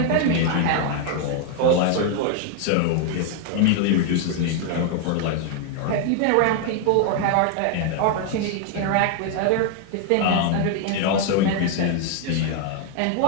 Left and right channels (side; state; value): both; different; correlation 0.00